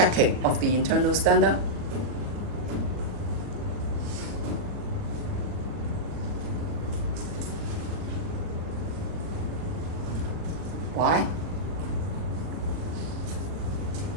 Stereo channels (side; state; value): left; late; 40 ms